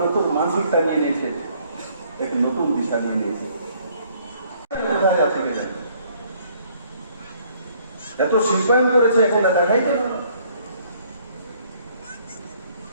নতুন মানসিকতা নিয়ে নিয়েছে, এক নতুন দিশা নিয়ে নিয়েছে। কোথায় আছে কে জানে? এত শিল্পায়ন করেছে, এখন দেখাই গেল।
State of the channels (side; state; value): both; inverted; correlation -0.63